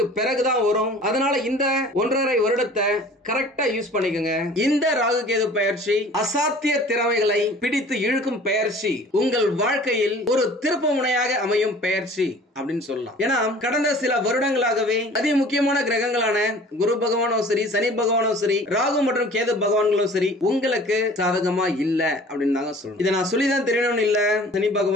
பிறகுதான் வரும். அதனால இந்த 1.5 வருடத்தை கரெக்டா யூஸ் பண்ணிக்கோங்க. இந்த ராகு கேது பயிற்சி அசாத்திய திறமைகளை பிடித்து இழுக்கும் பயிற்சி. உங்கள் வாழ்க்கையில் ஒரு திருப்பு முனையாக அமையும் பயிற்சி அப்படின்னு சொல்லலாம். ஏன்னா கடந்த சில வருடங்களாகவே அதி முக்கியமான கிரகங்களான குரு பகவானும் சரி, சனி பகவானும் சரி, ராகு மற்றும் கேது பகவான்களும் சரி உங்களுக்கு சாதகமா இல்ல அப்படின்னு நாங்க சொல்றோம். இதை நான் சொல்லிதான் தெரியணும்னு இல்ல. சனி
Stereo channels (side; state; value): both; normal; correlation 0.47